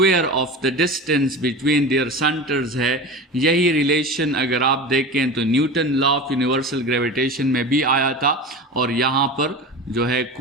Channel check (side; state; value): both; normal; correlation 0.30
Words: of the distance between their centres है, यही रिलेशन अगर आप देखें तो Newton law of universal gravitation में भी आया था, और यहाँ पर जो है